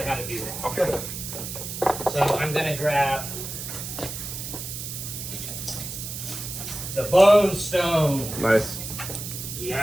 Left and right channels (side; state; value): right; noise; hiss, 7 dB below the sound